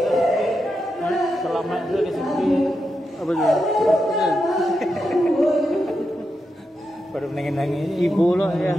Selamat dulu ke sini. Apa tu? Baru nangis ibu loh ya.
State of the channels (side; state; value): both; normal; correlation 0.86